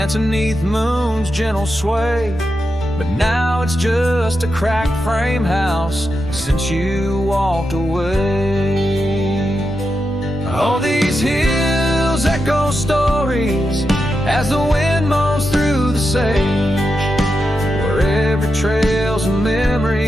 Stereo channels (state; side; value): normal; both; correlation 0.87